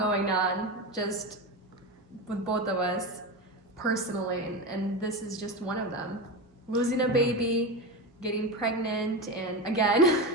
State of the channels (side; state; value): both; normal; correlation 0.20